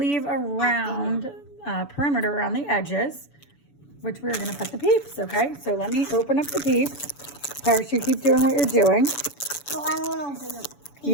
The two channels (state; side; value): late; right; 7.0 ms